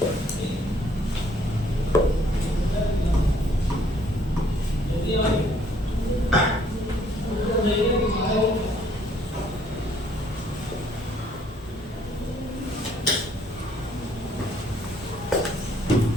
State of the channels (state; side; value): normal; both; correlation 0.64